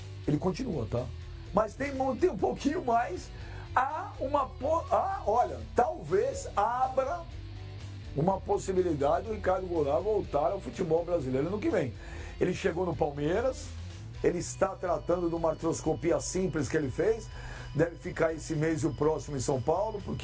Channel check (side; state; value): both; identical; correlation 1.00